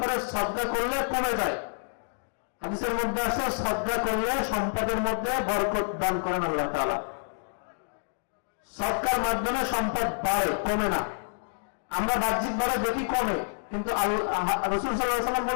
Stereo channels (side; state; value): right; silent; digital silence